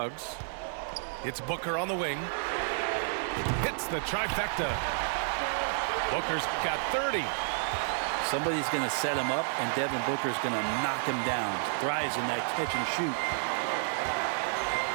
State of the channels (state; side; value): silent; left; digital silence